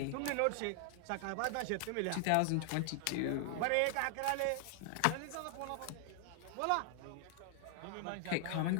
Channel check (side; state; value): both; different; correlation 0.00